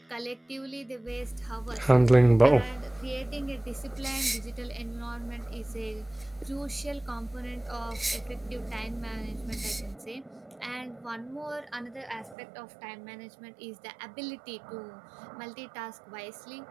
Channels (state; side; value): drops out; left; at 12.4 s